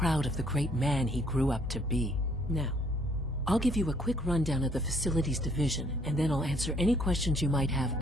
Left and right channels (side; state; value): both; normal; correlation 0.64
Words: of the great man he grew up to be. Now, I'll give you a quick rundown of the Facilities Division, and then I'll answer any questions you might have